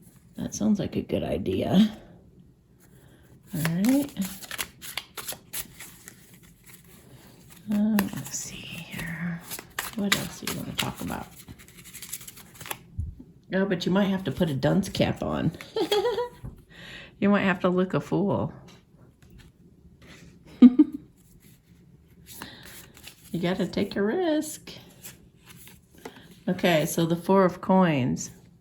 That sounds like a good idea. All right. Let's see here. What else do you want to talk about? Oh, but you might have to put a dunce cap on. You might have to look a fool. You got to take a risk. Okay, so the Four of Coins.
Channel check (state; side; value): identical; both; correlation 1.00